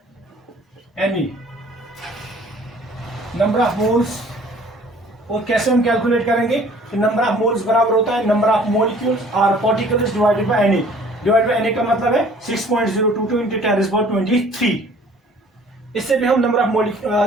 Ne। Number of moles, और कैसे हम कैलकुलेट करेंगे कि नंबर ऑफ मोल्स बराबर होता है नंबर ऑफ मॉलिक्यूल्स और particles divided by Ne। Divide by Ne का मतलब है 6.022 into 10⁻23। इससे भी हम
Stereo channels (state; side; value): normal; both; correlation 0.53